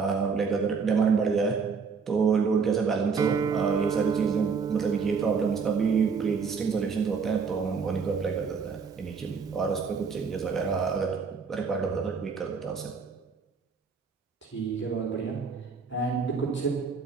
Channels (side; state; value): left; quieter; 5.4 dB